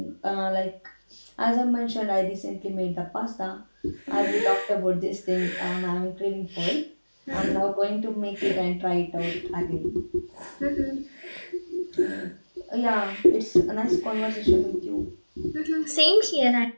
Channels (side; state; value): both; inverted; correlation -1.00